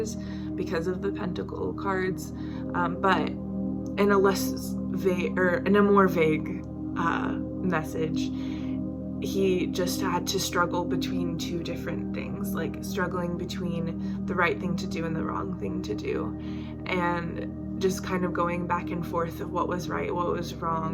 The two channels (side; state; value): both; identical; correlation 1.00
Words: because of the Pentacle cards, but in a less vague, or in a more vague message, he just had to struggle between 2 different things, like struggling between the right thing to do and the wrong thing to do, and just kind of going back and forth of what was right, what was